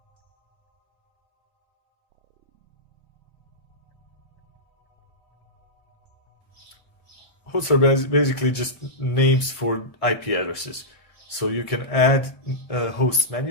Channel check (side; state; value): right; late; 1.5 ms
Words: Hosts are basically just names for IP addresses. So you can add hosts